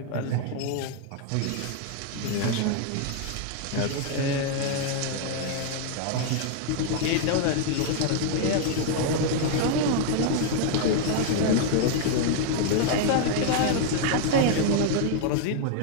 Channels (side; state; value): both; different; correlation 0.00